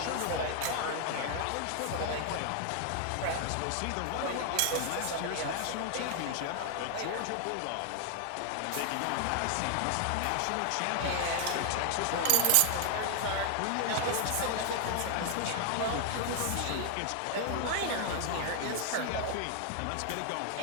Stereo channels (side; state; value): both; different; correlation 0.00